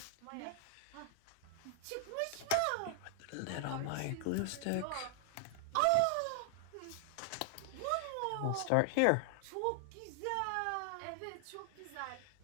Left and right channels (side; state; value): both; different; correlation 0.00